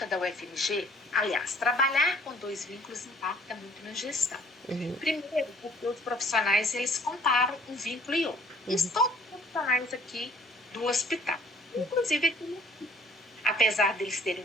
da UFMG, aliás, trabalhar com 2 vínculos impacta muito na gestão. Primeiro, porque os profissionais, eles comparam um vínculo e outro. Isso todos os profissionais aqui do hospital. Inclusive aqui, apesar deles terem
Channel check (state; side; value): normal; both; correlation 0.58